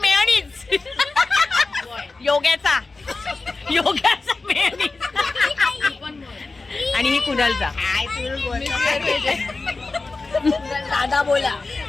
योग्याचा मेयोनीज आणि ही कुणालचा. दादा बोला.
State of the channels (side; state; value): right; quieter; 3.7 dB